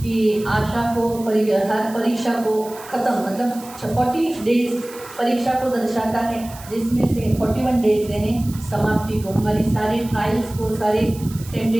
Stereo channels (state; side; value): noise; right; hiss, 18 dB below the sound